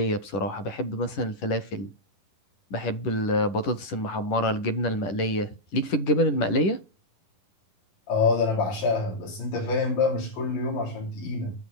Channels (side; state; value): right; late; 10 ms